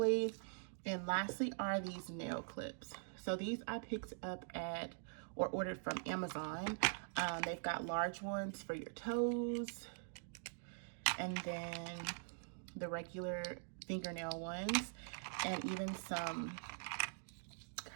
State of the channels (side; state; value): left; silent; digital silence